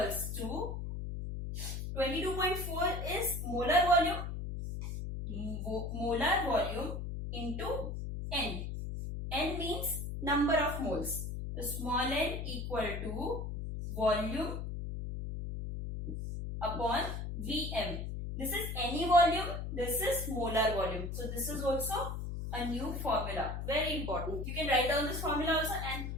to 22.4 is molar volume. Molar volume into N. N means number of moles. So small n equal to volume upon Vm. This is any volume. This is molar volume. So this is also a new formula. Very important. You can write down this formula also and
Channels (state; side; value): noise; left; hum, 5 dB below the sound